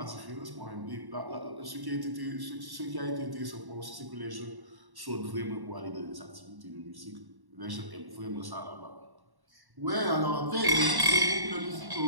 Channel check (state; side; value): late; left; 1.1 ms